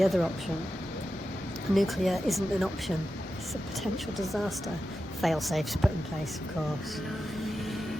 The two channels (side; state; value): both; normal; correlation 0.91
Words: other option. Nuclear isn't an option, it's a potential disaster. Fail-safes put in place, of course.